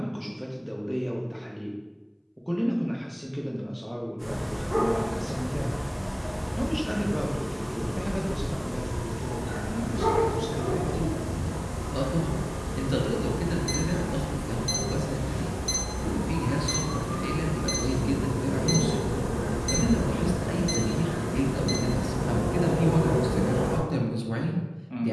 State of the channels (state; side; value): identical; both; correlation 1.00